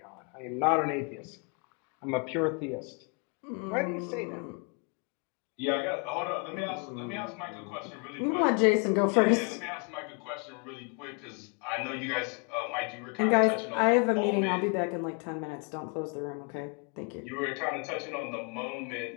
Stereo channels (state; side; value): quieter; right; 36.0 dB